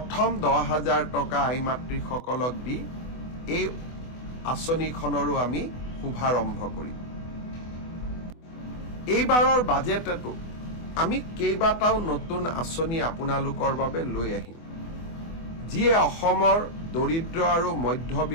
10,000 টকা আই মাতৃসকলক দি এই আঁচনিখনৰো আমি শুভাৰম্ভ কৰিম। এইবাৰৰ বাজেটতো আমি কেইবাটাও নতুন আঁচনি আপোনালোকৰ বাবে লৈ আহিম, যিয়ে অসমৰ দৰিদ্ৰ আৰু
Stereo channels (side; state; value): right; late; 24 ms